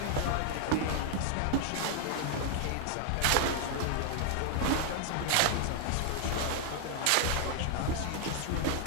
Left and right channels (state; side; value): different; both; correlation 0.00